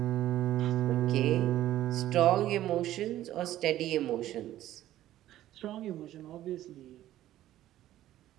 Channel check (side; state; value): left; quieter; 13.6 dB